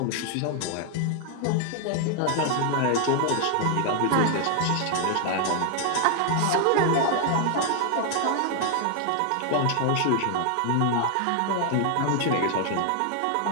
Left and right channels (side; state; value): both; different; correlation 0.00